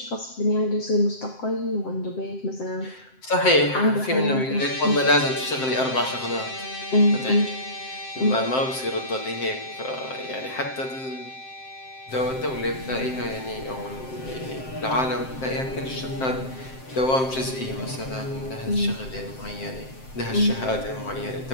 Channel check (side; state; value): right; late; 7.7 ms